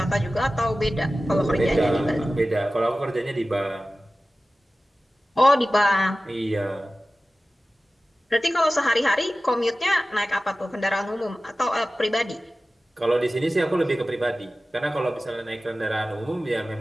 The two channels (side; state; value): both; normal; correlation 0.96